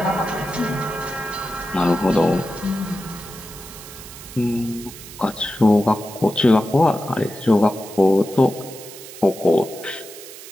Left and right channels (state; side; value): noise; right; hiss, 15 dB below the sound